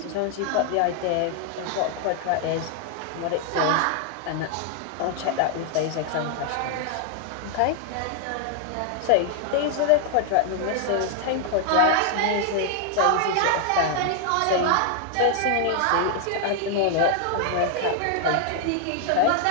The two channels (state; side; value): different; both; correlation 0.00